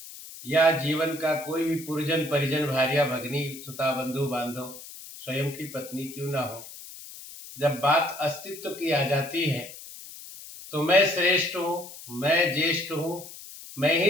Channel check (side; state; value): left; noise; hiss, 15 dB below the sound